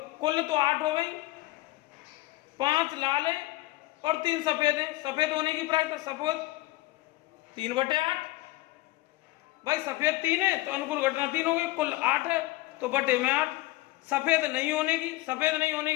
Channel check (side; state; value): right; quieter; 19.0 dB